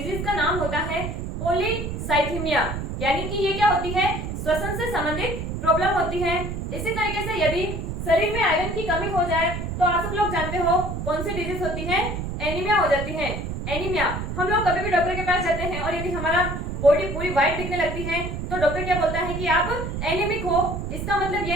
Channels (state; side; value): noise; right; rumble, 5 dB below the sound